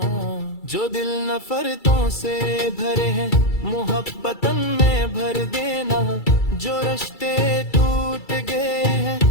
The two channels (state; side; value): late; right; 2.3 ms